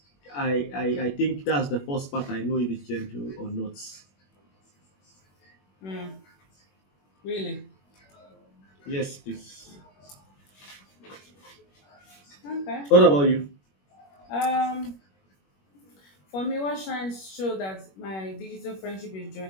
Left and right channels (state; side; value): late; right; 21 ms